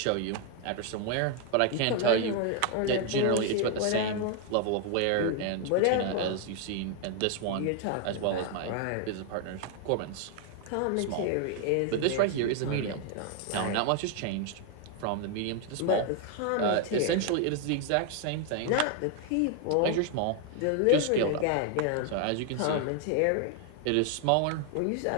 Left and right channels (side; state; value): both; different; correlation 0.00